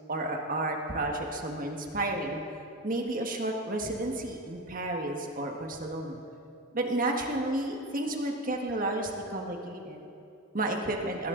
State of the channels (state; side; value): normal; both; correlation 0.21